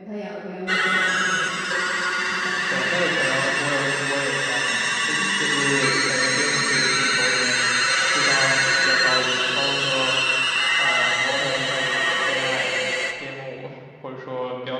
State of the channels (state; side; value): identical; both; correlation 1.00